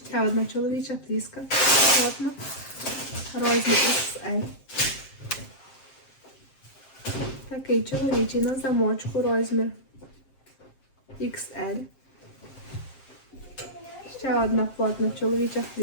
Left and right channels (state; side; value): late; right; 7.5 ms